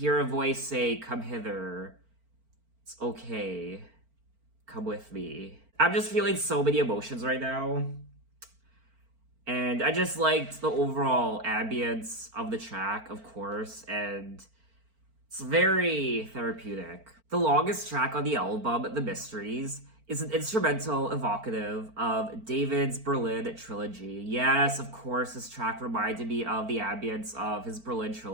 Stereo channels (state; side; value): late; left; 4.4 ms